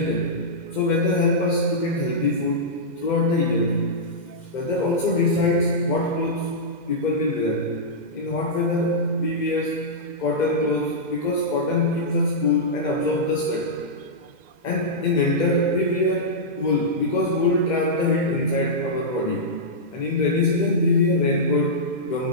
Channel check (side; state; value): right; late; 2.1 ms